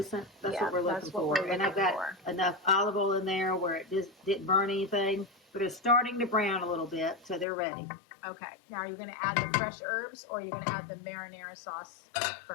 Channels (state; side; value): drops out; right; at 7.5 s